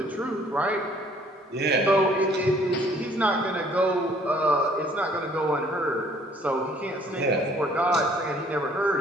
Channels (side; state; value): both; normal; correlation 0.59